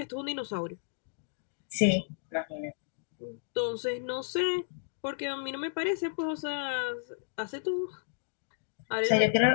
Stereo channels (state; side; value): silent; right; digital silence